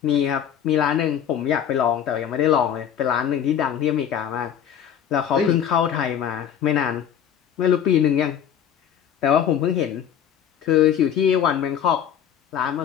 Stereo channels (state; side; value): quieter; right; 9.1 dB